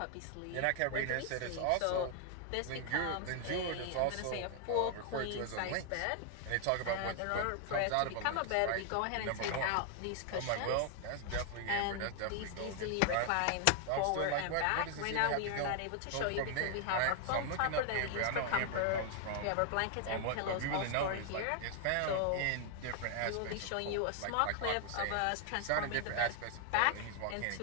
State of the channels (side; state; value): both; different; correlation 0.00